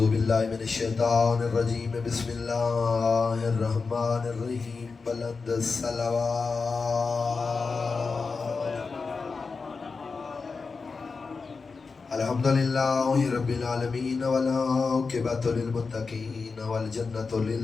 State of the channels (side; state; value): right; quieter; 4.6 dB